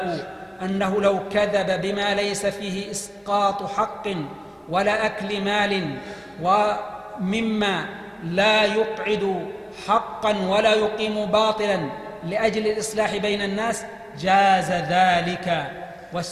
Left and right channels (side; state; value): both; identical; correlation 1.00